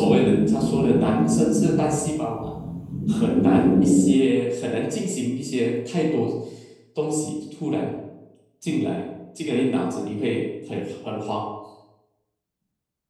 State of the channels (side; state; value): both; identical; correlation 1.00